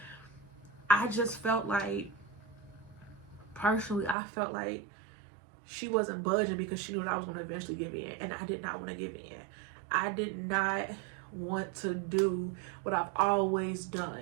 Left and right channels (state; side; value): drops out; left; at 4.2 s